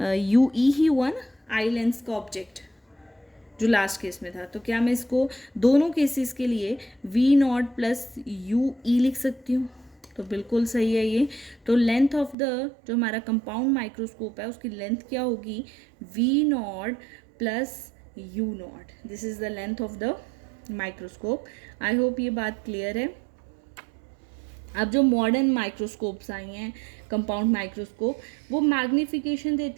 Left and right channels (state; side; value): drops out; left; at 12.4 s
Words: ई ही हुआ ना, आई लेंस का ऑब्जेक्ट जो लास्ट केस में था। तो क्या मैं इसको दोनों केसेस के लिए V not plus U E लिख सकती हूँ, तो बिल्कुल सही है ये। तो लेंथ ऑफ द जो हमारा कंपाउंड माइक्रोस्कोप है उसकी लेंथ क्या होगी, V not plus U not, this is the length of the microscope. I hope ये बात क्लियर है। अब जो मॉडर्न माइक्रोस्कोप्स आई हैं, कंपाउंड माइक्रोस्कोप, वो मैग्नीफिकेशन